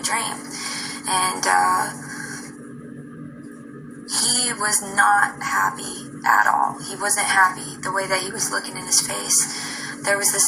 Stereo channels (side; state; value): both; identical; correlation 1.00